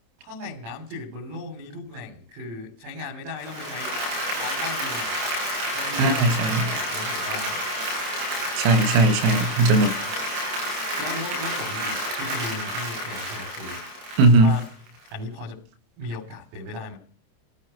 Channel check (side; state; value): left; late; 27 ms